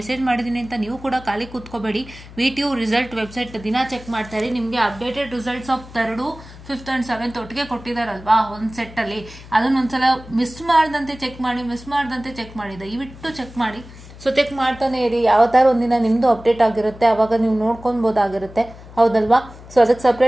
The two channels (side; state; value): left; noise; hum, 18 dB below the sound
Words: ಮಾಡಿದ್ದೀನಿ ಅಂತ ನೀವು ಕೂಡ ಖಾಲಿ ಕೂತ್ಕೋಬೇಡಿ. VTO ರಿಸಲ್ಟ್ ವೆಬ್ಸೈಟ್ ದಿನ ಚೆಕ್ ಮಾಡ್ತಾರೆ. ನಿಮಗೆ updated results of 3rd, 5th and 7th ಒಟ್ಟಿಗೆ ಕೊಟ್ಟಿದ್ದಾರಲ್ವಾ ಒಂದು ಸೆಟ್ಟಲ್ಲಿ, ಅದನ್ನೊಂದ್ಸಲ ಮಿಸ್ ಮಾಡ್ದಂತೆ ಚೆಕ್ ಮಾಡಿ ದಯವಿಟ್ಟು ಚೆಕ್ ಮಾಡಿ. ಸೊ ಚೆಕ್ ಮಾಡ್ತಾನೆ ಇರಿ. ಯಾವತ್ತಾರು ಒಂದಿನ ನಿಮ್ಮದು ಅಪ್ಡೇಟ್ ಆಗಿರುತ್ತೆ, ಅವಾಗ ನೀವು ನೋಡ್ಕೊಬೋದಾಗಿರುತ್ತೆ, ಹೌದಲ್ವಾ? ಸೊ ಅದಕ್ಕೆ